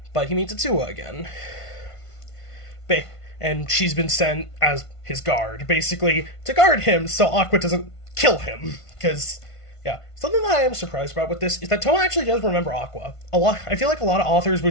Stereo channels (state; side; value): late; right; 1.5 ms